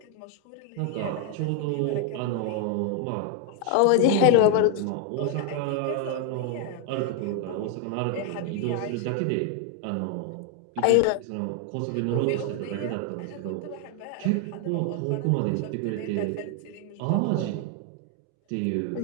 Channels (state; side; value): different; both; correlation 0.00